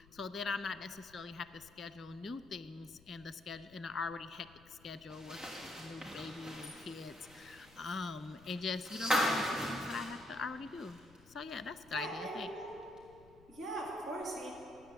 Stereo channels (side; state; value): left; noise; rumble, 23 dB below the sound